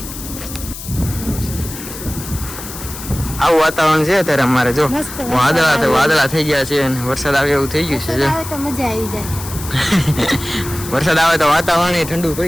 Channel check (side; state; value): left; noise; hiss, 11 dB below the sound